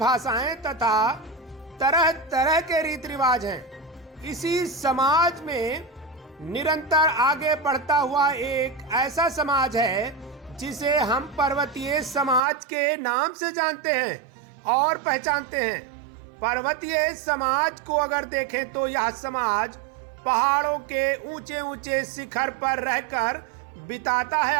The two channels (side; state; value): left; drops out; at 12.4 s